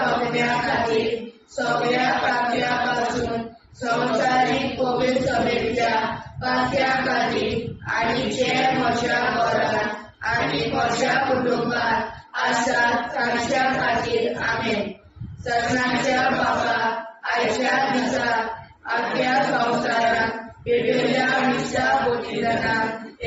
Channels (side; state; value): both; identical; correlation 1.00